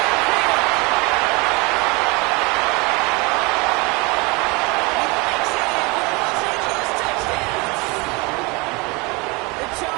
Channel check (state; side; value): quieter; left; 27.1 dB